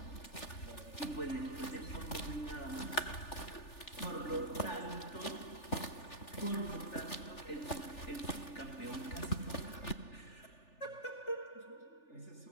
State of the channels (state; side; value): late; right; 3.4 ms